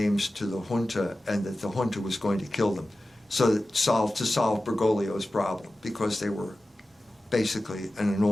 to the junta, and that the junta was going to kill them, so that to solve Bergoglio's problem, because they were basically an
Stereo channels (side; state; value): both; normal; correlation 0.95